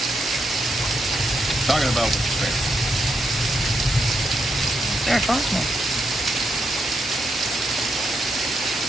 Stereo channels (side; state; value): both; normal; correlation 0.81